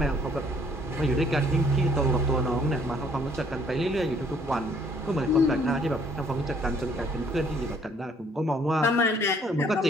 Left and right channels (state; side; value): normal; both; correlation 0.62